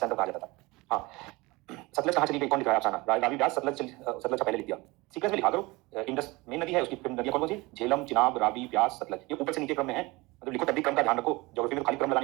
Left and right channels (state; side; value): quieter; left; 23.0 dB